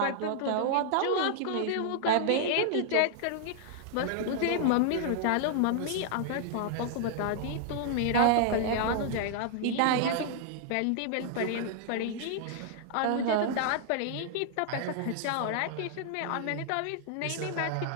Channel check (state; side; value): different; both; correlation -0.01